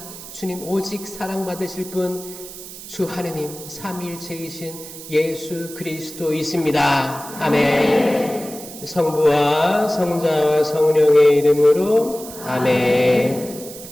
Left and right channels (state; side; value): noise; right; hiss, 14 dB below the sound